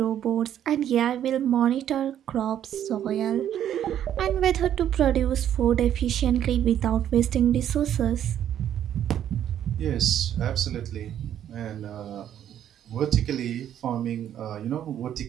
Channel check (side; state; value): left; quieter; 10.5 dB